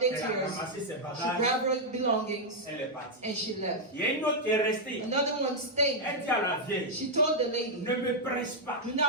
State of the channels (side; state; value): both; normal; correlation -0.03